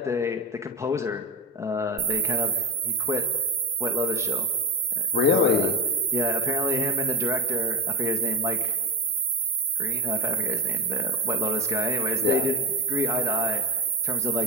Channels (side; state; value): both; normal; correlation 0.17